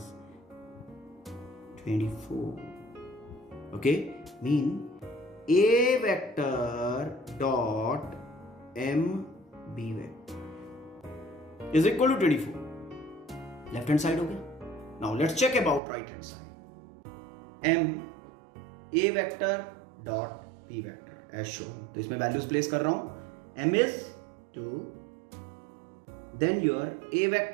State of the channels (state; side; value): drops out; left; at 15.8 s